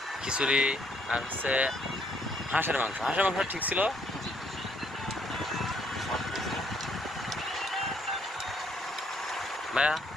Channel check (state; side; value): normal; both; correlation 0.67